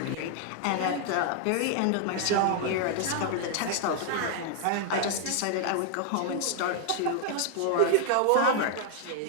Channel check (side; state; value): both; different; correlation 0.00